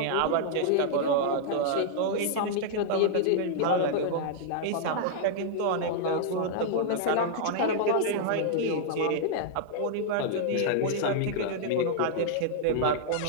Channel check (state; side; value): different; both; correlation -0.01